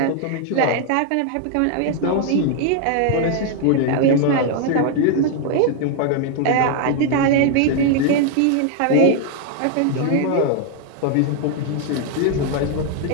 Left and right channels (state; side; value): different; both; correlation 0.00